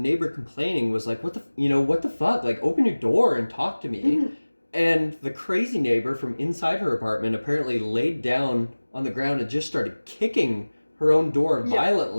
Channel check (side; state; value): both; inverted; correlation -1.00